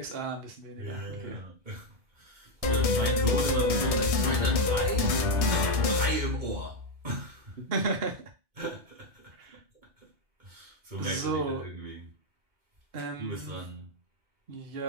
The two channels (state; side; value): late; left; 1.6 ms